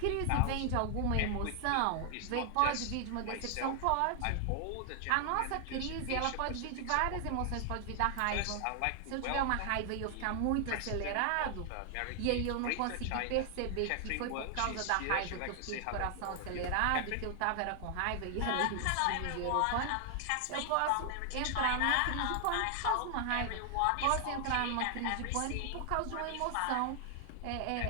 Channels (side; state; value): both; different; correlation 0.00